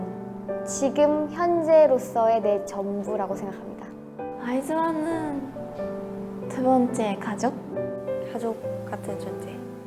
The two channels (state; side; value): identical; both; correlation 1.00